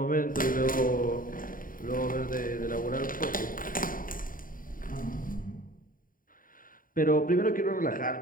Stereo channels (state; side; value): late; right; 0.40 ms